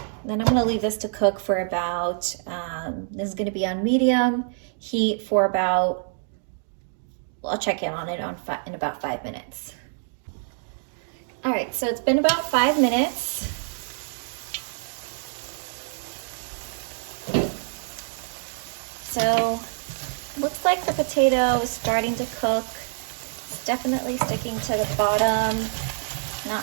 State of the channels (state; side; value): silent; left; digital silence